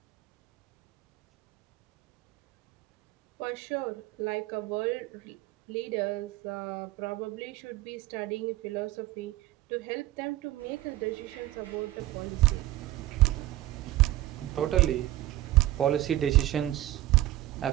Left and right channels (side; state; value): left; quieter; 15.6 dB